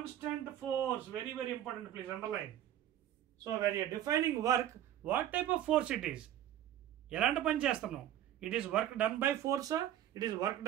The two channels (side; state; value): left; quieter; 11.7 dB